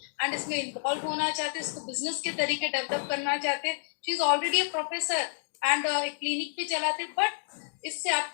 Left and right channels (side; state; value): right; silent; digital silence